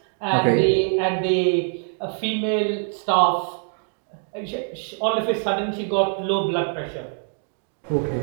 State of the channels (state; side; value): silent; left; digital silence